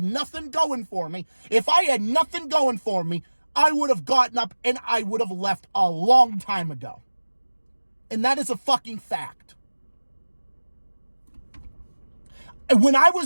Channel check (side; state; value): both; inverted; correlation -1.00